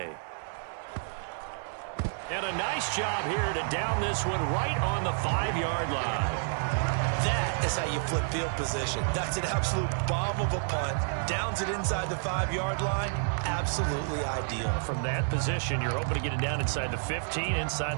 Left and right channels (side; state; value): left; silent; 56 dB below the other